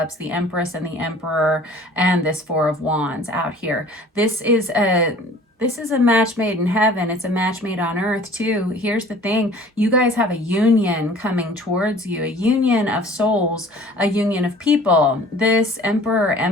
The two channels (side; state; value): both; normal; correlation 0.48